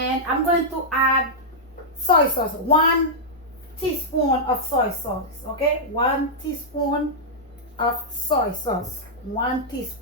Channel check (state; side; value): normal; both; correlation -0.08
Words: I'm going to add soy sauce. 1 teaspoon of soy sauce. Okay, 1 teaspoon of soy sauce. 1